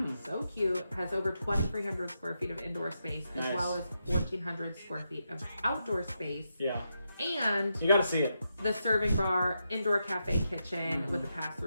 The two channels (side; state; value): both; inverted; correlation -0.84